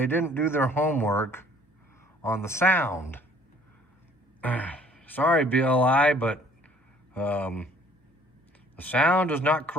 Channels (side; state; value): both; normal; correlation 0.57